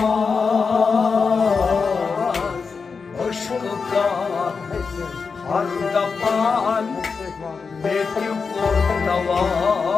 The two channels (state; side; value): quieter; right; 5.1 dB